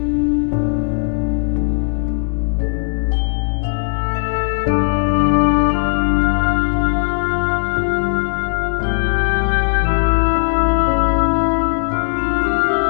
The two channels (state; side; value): silent; right; digital silence